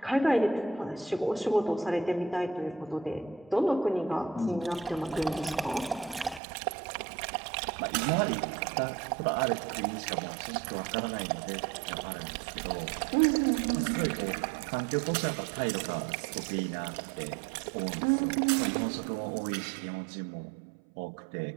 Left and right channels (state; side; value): drops out; left; at 6.4 s